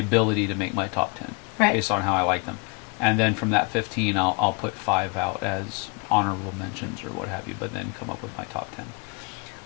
to make my top 10, right, based on how I like them. And then from that 15, I'll put 5 out as honorable mentions or what have you, but then come up with my top 10.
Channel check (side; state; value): right; quieter; 31.7 dB